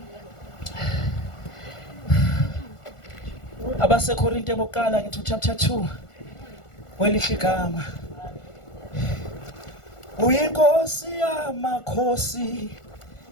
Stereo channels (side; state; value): right; late; 1.4 ms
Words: Abasekorinte bokuqala ngithi chapter 2 welihle igama. Uyinkosi yamakhosi,